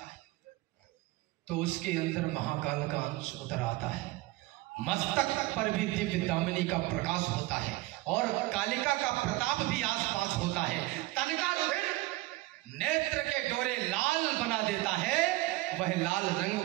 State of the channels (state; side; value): quieter; left; 19.5 dB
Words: है तो उसके अंदर महाकाल का अंश उतर आता है, मस्तक पर भी दिव्य दामिनी का प्रकाश होता है और कालिका का प्रताप भी आसपास होता है, तन का रुधिर नेत्र के डोरे लाल बना देता है, वह लाल